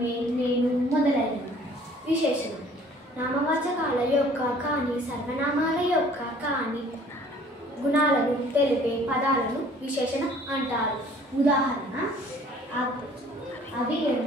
నేను మొదలైనవి. విశేషణం నామవాచకాల యొక్క కానీ సర్వనామాల యొక్క కానీ గుణాలను తెలిపే పదాలను విశేషణం అంటారు. ఉదాహరణ అవి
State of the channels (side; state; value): both; normal; correlation 0.54